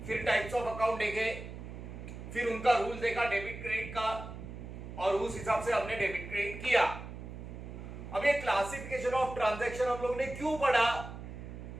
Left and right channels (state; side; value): noise; right; hum, 10 dB below the sound